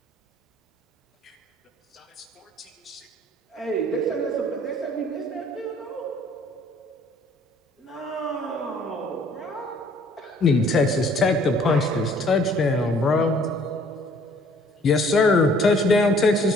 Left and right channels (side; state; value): both; normal; correlation 0.58